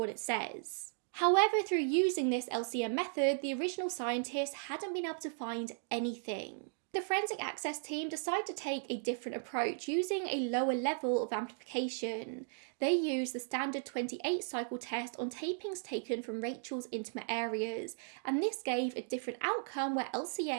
it says. However, through using this LCN method, the original scientists hadn't been able to find anything. The Forensic Access team decided to take a different approach, using a lower level of amplification. They used the standard 28 cycle test on tapings taken from Rachel's intimate areas, and this gave a different outcome where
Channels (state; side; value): silent; left; digital silence